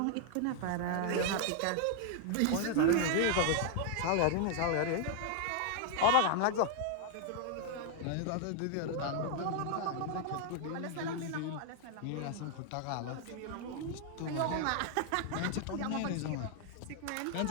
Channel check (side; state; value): both; different; correlation 0.00